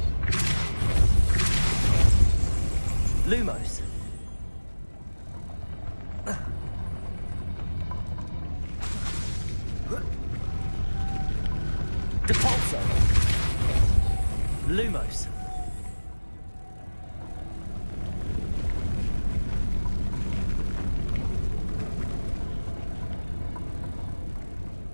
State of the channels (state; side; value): inverted; both; correlation -1.00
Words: Lumos. Depulso. Lumos.